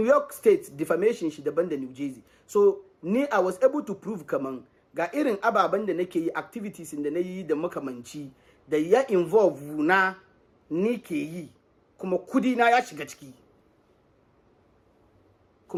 York State defamation shi daban da New Jersey. So ni I was able to prove kaman ga irin ababen da nake yi, activities da na yi da makamanci da ya involve na ni ke yi kuma kudi na ya shiga ciki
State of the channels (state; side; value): identical; both; correlation 1.00